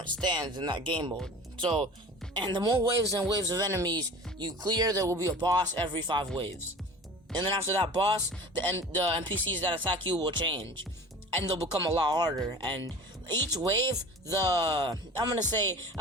stands in that game mode. So, and the more waves and waves of enemies you clear, there will be a boss every 5 waves. And then after that boss, the NPCs that attack you will change, and they'll become a lot harder. And each wave, I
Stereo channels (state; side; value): normal; both; correlation 0.39